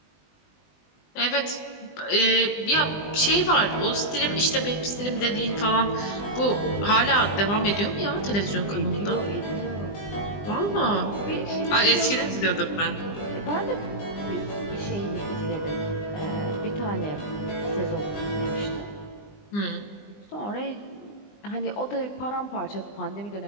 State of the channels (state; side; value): late; right; 20 ms